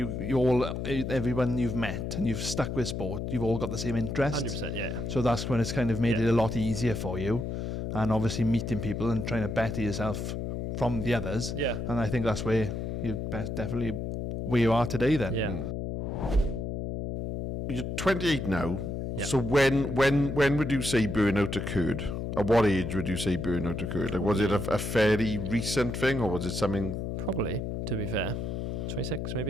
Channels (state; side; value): noise; left; hum, 4 dB below the sound